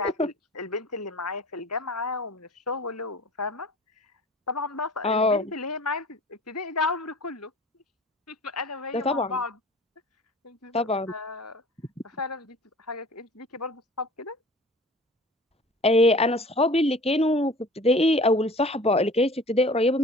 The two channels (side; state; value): both; normal; correlation 0.44